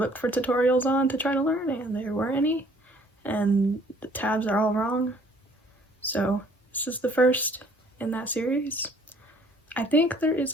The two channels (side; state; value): both; normal; correlation 0.58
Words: for tutorials on to try to learn, and there weren't any, and the tabs are all wrong. So this is the first in that series. I think there